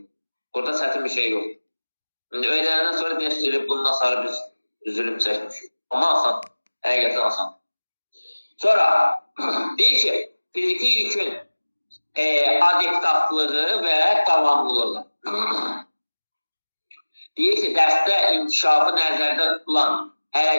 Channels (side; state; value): both; inverted; correlation -1.00